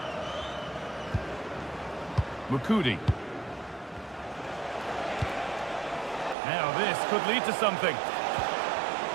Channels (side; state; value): left; drops out; at 6.4 s